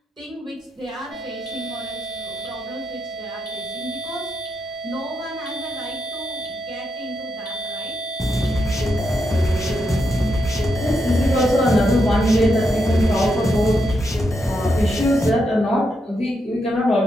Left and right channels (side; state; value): both; normal; correlation 0.82